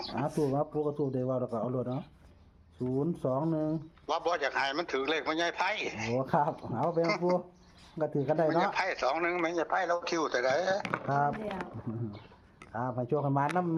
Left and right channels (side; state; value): both; identical; correlation 1.00